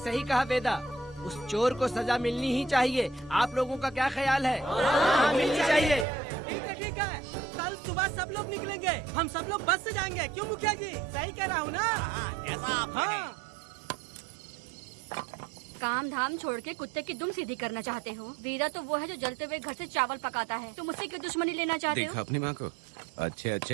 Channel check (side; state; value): left; drops out; at 6.1 s